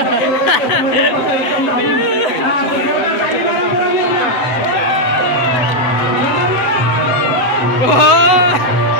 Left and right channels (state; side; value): late; right; 7.9 ms